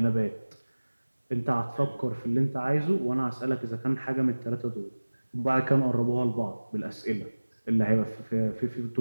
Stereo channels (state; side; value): inverted; both; correlation -1.00